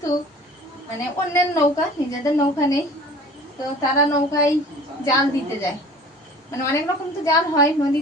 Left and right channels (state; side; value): normal; both; correlation 0.45